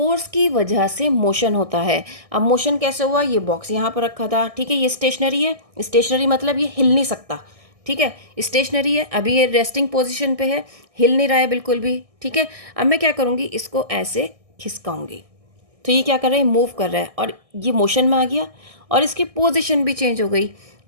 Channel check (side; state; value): left; late; 1.6 ms